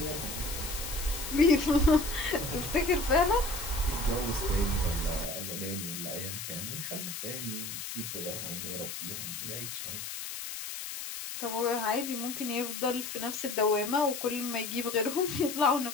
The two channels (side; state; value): left; noise; hiss, 7 dB below the sound